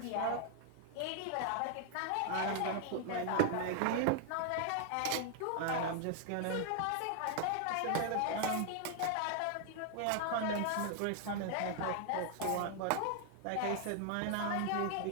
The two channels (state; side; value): different; both; correlation 0.00